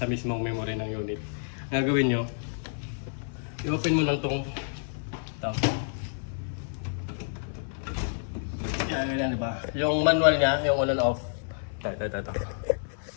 mismong memory ng unit. Ang gagawin nyo, i-open mo lang itong yan, diba? Yung manual niya, yung on and off. Ito.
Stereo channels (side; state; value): right; silent; 55 dB below the other